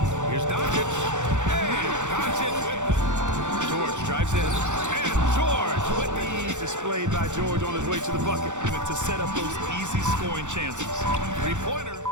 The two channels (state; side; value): late; left; 0.85 ms